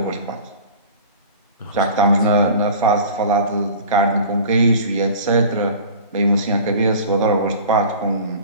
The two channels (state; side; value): inverted; both; correlation -0.41